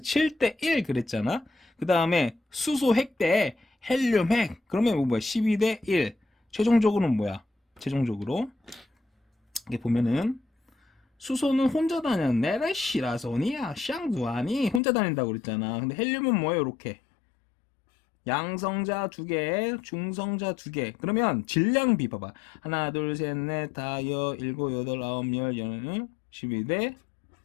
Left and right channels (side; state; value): right; drops out; at 14.8 s